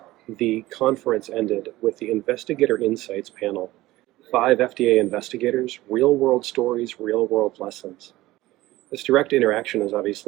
the conference ended with the Investigator Insights panel. 5 FDA investigators, real world stories, real world lessons. This direct interaction is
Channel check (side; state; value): left; quieter; 17.4 dB